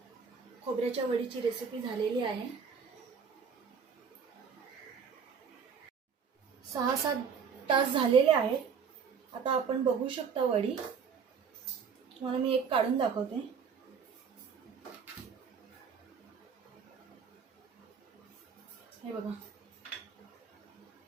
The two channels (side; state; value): left; quieter; 6.3 dB